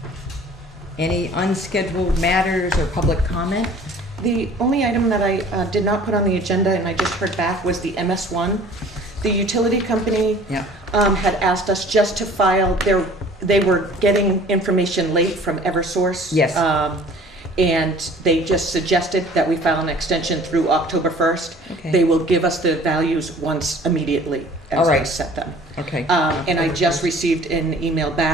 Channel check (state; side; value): normal; both; correlation 0.49